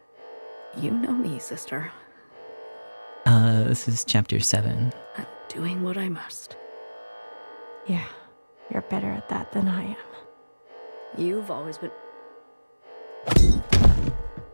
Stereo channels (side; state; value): both; inverted; correlation -1.00